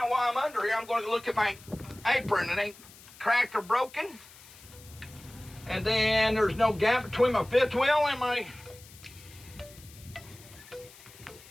while I'm under here, I'm going to look at my apron. It ain't cracked or broken. And then there's no gap between my fifth wheel and my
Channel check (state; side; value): noise; left; hiss, 21 dB below the sound